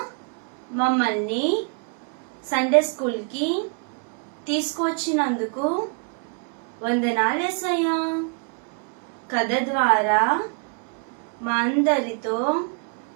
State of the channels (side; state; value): left; quieter; 39.8 dB